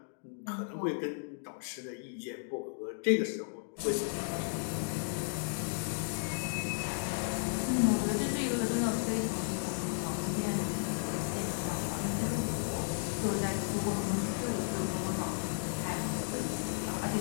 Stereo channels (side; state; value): right; silent; digital silence